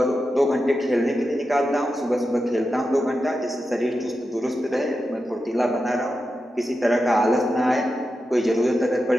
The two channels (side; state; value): both; normal; correlation 0.90